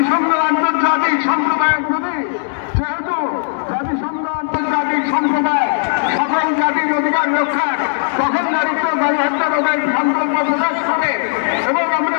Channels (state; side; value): silent; right; digital silence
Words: আন্তর্জাতিক সম্প্রদায়ের প্রতি, যেহেতু জাতিসংঘ